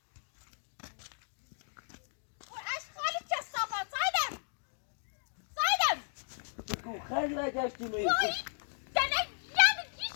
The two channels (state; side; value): silent; right; digital silence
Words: خیلی نگشتی میری